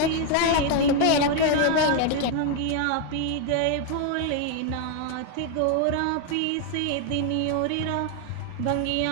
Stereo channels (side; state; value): both; different; correlation 0.01